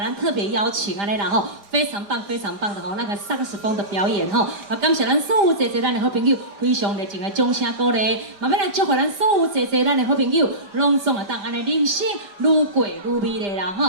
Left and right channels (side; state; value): left; late; 5.0 ms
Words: 特别邀请啊，来然后非常棒的吼，那个上课时风的表演吼，啊，感谢咱所有坐咱的好朋友，非常热情的掌声鼓励，嘛要来祝福咱所有坐咱的好朋友，拢总会当安尼人生愈过愈美丽啦